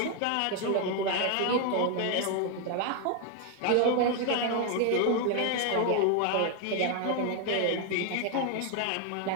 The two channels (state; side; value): different; both; correlation 0.01